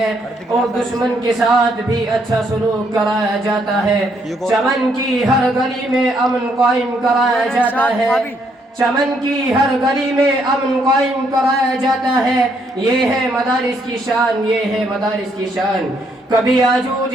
اور دشمن کے ساتھ بھی اچھا سلوک کرایا جاتا ہے. چمن کی ہر گلی میں امن قائم کرایا جاتا ہے. چمن کی ہر گلی میں امن قائم کرایا جاتا ہے. یہ ہے مدارس کی شان، یہ ہے مدارس کی شان. کبھی آجوج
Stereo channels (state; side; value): normal; both; correlation 0.72